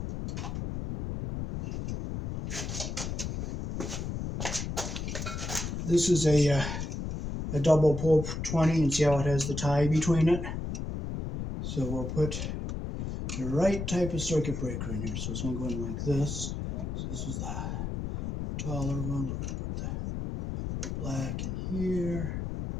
This is a double pull 20, and see how it has the tie between it? So we'll put the right type of circuit breaker in here. So it's going to go in like this. So this is the taller one. We're going to put the black in here.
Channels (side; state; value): left; noise; rumble, 4 dB below the sound